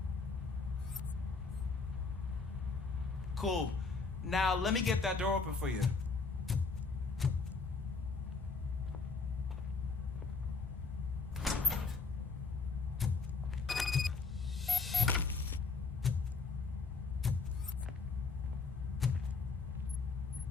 Cool. Now let me get that door open for you.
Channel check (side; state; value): right; quieter; 4.3 dB